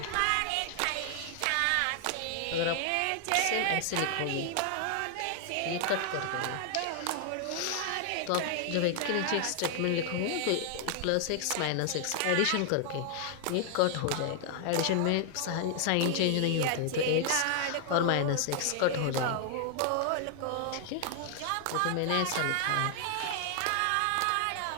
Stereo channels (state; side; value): different; both; correlation 0.00